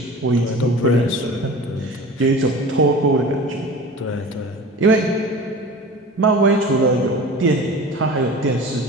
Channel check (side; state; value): both; normal; correlation 0.37